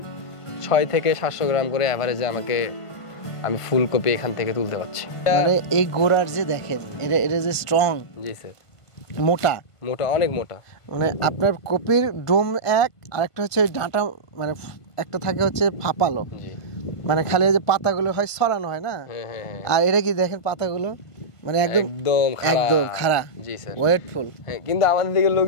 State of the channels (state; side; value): late; right; 1.5 ms